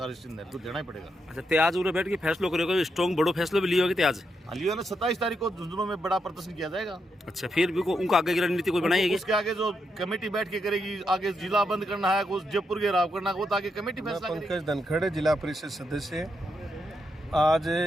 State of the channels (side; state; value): both; normal; correlation 0.82